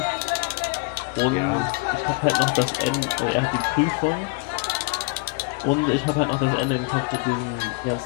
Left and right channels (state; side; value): quieter; right; 27.2 dB